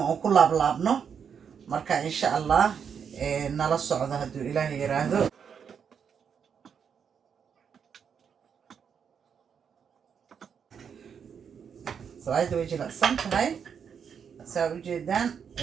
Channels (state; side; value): quieter; left; 7.2 dB